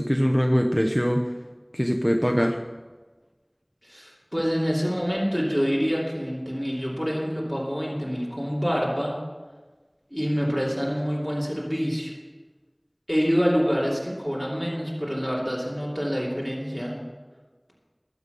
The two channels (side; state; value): both; identical; correlation 1.00